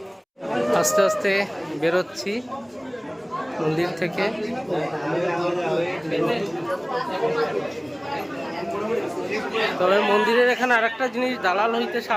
আস্তে আস্তে বেরোচ্ছি মন্দির থেকে। তবে মন্দিরের এখানে আরেকটা জিনিস, দালাল হইতে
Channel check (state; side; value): identical; both; correlation 1.00